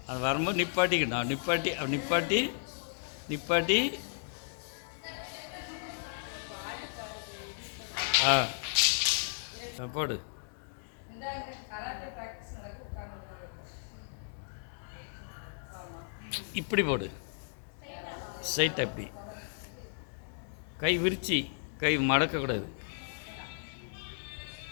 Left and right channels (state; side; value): silent; right; digital silence